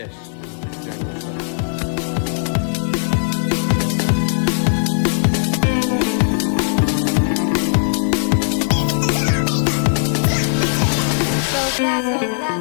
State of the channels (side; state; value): right; silent; 67 dB below the other